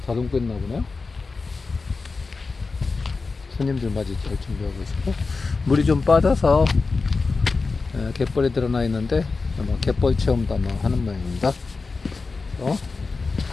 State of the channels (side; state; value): right; quieter; 4.2 dB